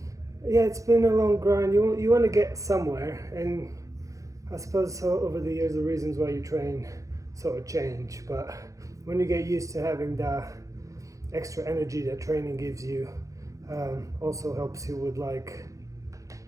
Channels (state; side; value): late; left; 0.16 ms